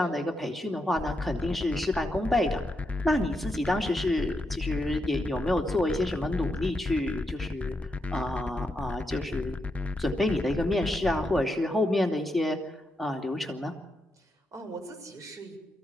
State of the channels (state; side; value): normal; both; correlation 0.83